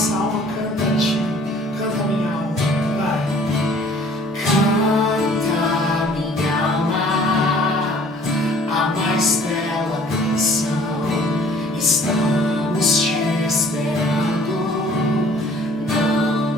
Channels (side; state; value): both; normal; correlation 0.53